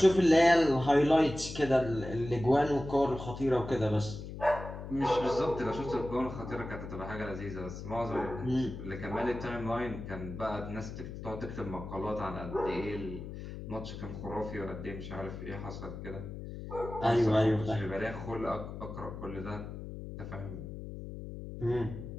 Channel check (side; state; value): left; noise; hum, 9 dB below the sound